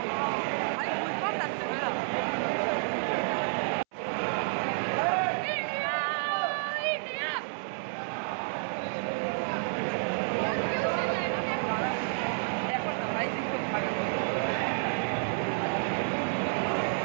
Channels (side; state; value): left; silent; 58 dB below the other